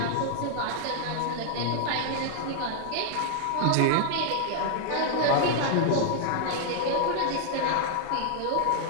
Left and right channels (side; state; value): both; different; correlation -0.01